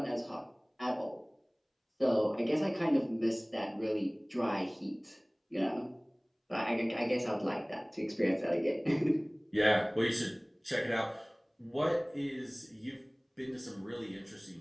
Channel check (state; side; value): identical; both; correlation 1.00